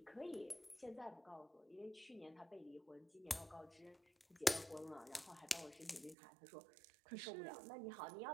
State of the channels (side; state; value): left; drops out; at 6.2 s